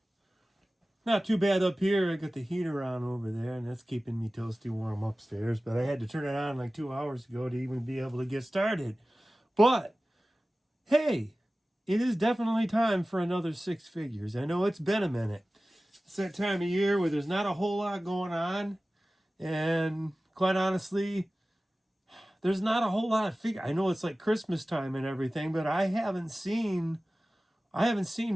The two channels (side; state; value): both; normal; correlation 0.96